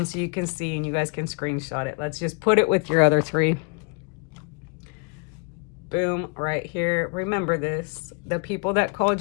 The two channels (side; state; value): right; quieter; 37.3 dB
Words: so you can see and you guys can screenshot it. Let's just put it with your other 3. Boom, right here. Remember this. The people that called